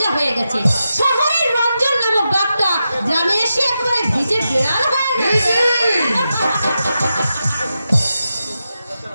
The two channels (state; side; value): inverted; both; correlation -0.89